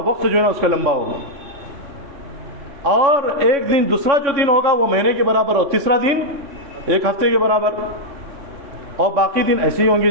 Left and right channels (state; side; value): late; left; 3.6 ms